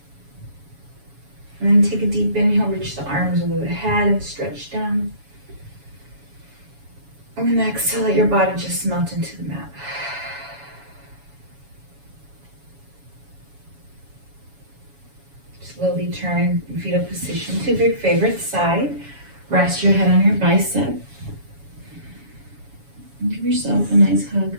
And then take a deep inhale, reach the arms over the head and stretch down. And then exhale, let your body just melt into the mat. Slowly turn in fetal position to your favorite side. Rest your head on your bicep. And give yourself a nice hug.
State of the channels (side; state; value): left; late; 7.1 ms